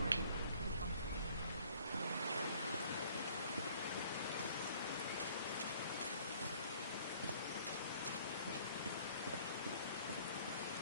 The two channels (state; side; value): inverted; both; correlation -0.56